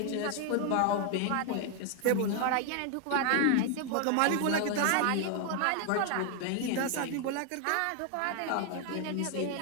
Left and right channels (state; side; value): different; both; correlation 0.00